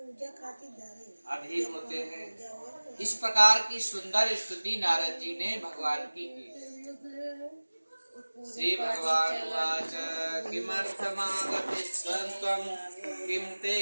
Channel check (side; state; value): both; inverted; correlation -1.00